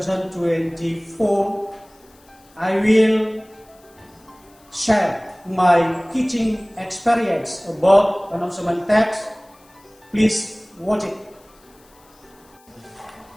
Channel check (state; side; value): noise; left; hiss, 30 dB below the sound